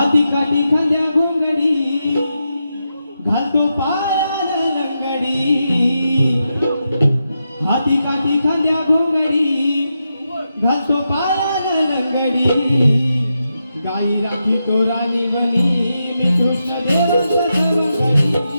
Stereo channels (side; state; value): both; inverted; correlation -0.87